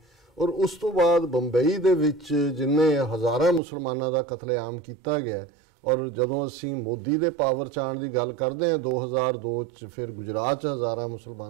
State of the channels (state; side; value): drops out; left; at 3.6 s